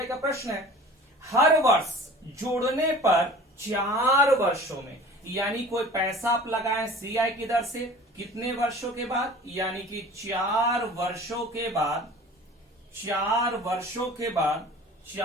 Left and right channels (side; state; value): both; normal; correlation 0.43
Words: का प्रश्न है, हर वर्ष जोड़ने पर 4 वर्षों में, यानी कोई पैसा आप लगाएं CI की दर से कितने वर्षों के बाद, यानी कि 4 वर्षों के बाद, 4 वर्षों के बाद,